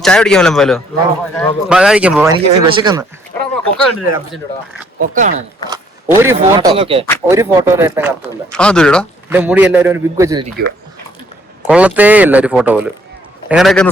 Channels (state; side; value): normal; both; correlation 0.64